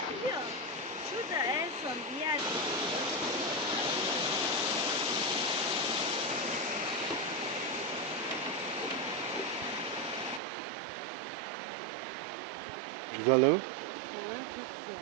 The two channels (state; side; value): drops out; left; at 10.4 s